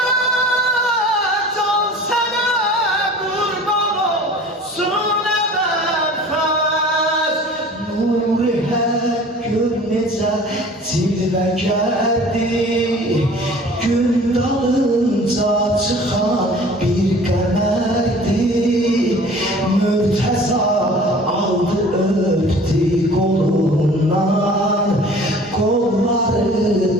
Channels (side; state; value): both; normal; correlation 0.46